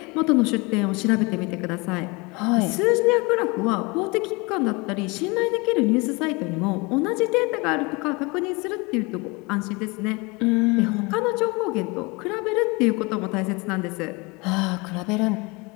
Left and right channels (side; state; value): right; quieter; 26.7 dB